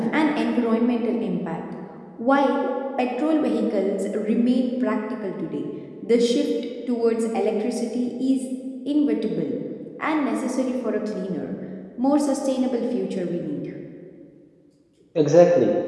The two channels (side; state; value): both; identical; correlation 1.00